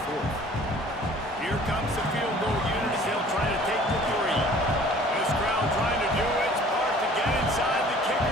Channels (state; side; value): normal; both; correlation 0.51